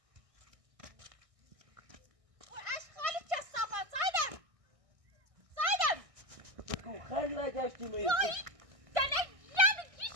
خیلی نگشتی میری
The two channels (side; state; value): left; late; 1.6 ms